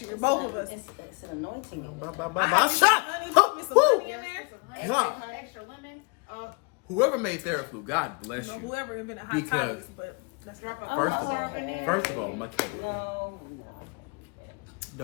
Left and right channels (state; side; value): quieter; right; 32.7 dB